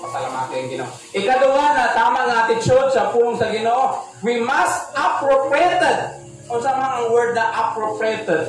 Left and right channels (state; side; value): identical; both; correlation 1.00